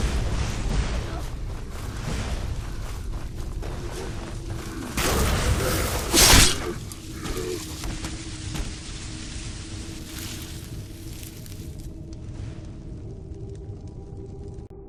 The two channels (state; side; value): identical; both; correlation 1.00